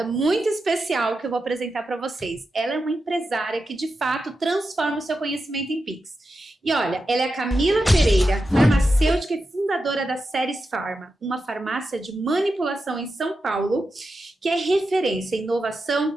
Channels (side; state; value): both; normal; correlation 0.89